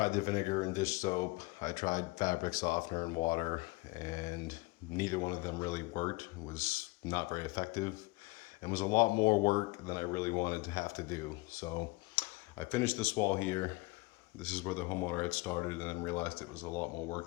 the vinegar and dish soap. I tried fabric softener and water, and neither one of them really worked. It was not very effective and was a lot more work than I really wanted to have to do. So I finished this wall here. This is where the homeowner had started and then realized it was a lot more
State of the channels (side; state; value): right; quieter; 23.8 dB